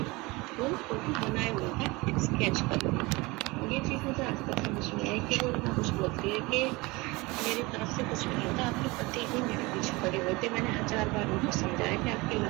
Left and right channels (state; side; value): quieter; left; 23.6 dB